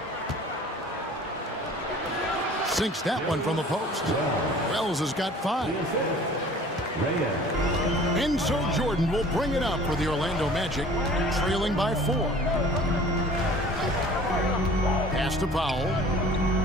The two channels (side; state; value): both; normal; correlation 0.47